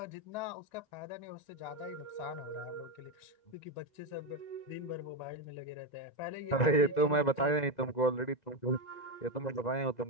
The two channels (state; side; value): late; right; 2.0 ms